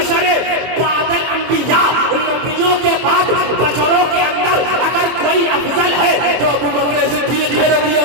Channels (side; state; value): left; late; 23 ms